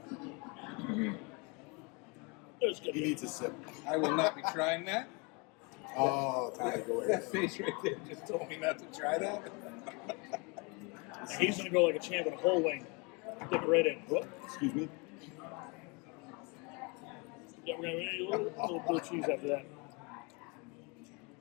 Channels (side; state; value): right; quieter; 29.7 dB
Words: It's good. He needs a sip. I will not be trying that. Oh, time to go away. That face right there just told me not to try that. He's gonna go like a champ with a whole wing. Dip it right in. Whoop. Excuse me. Yeah, we're gonna eat a little blue cheese after that.